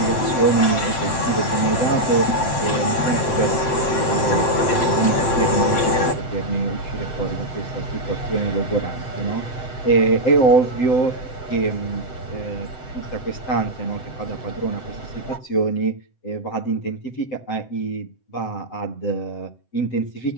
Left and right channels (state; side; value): late; right; 7.8 ms